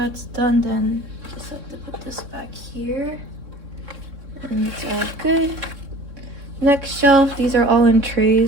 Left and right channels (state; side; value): late; left; 3.6 ms